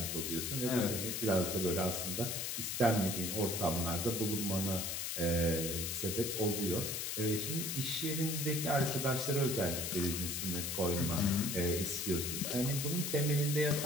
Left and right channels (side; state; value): left; noise; hiss, 2 dB below the sound